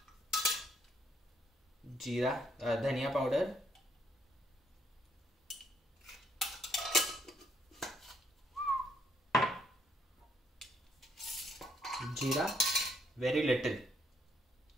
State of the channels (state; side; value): normal; both; correlation 0.70